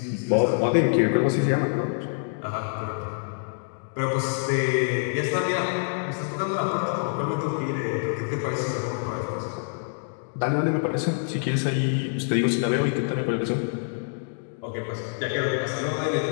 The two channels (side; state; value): right; silent; digital silence